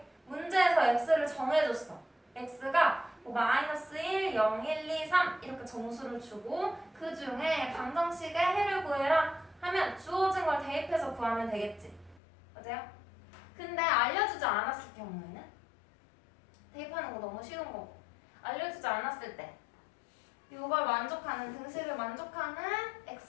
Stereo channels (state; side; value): drops out; right; at 12.2 s